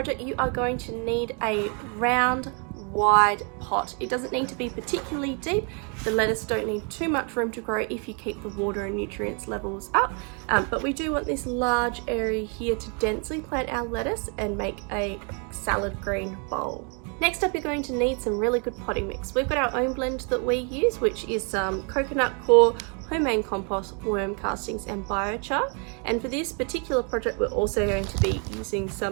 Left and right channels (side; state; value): left; quieter; 37.3 dB